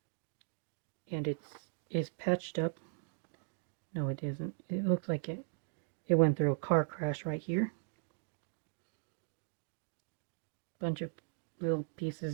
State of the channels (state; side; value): silent; left; digital silence